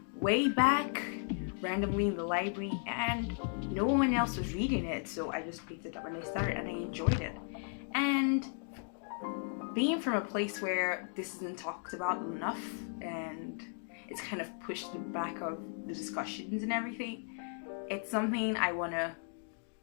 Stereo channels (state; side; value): silent; right; 54 dB below the other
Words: way back randomly in the library, and no one else was reading it, so I just picked it up and I started, and I enjoyed it. And being from a place where this isn't talked about enough and it's kind of pushed to the back of the discussions and everything, it's something I want to